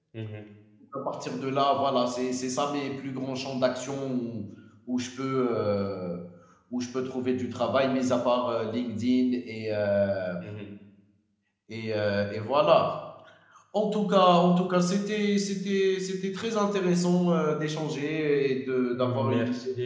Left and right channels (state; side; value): identical; both; correlation 1.00